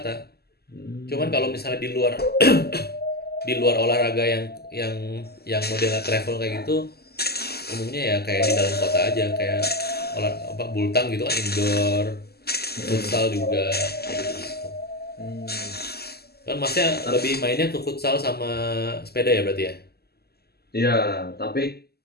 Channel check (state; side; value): late; right; 0.46 ms